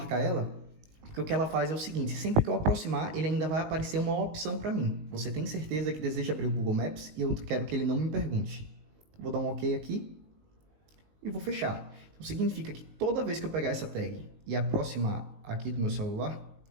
ela, porque o que ela faz é o seguinte, sempre que eu aproximar, ele ainda vai aparecer uma opção para mim. Você tem certeza que deseja abrir o Google Maps e eu quero que ele não me pergunte. Vou dar um OK aqui e vou fechar. Então significa que toda vez que eu pegar essa tag e aproximar aqui do meu celular,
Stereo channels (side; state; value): left; late; 19 ms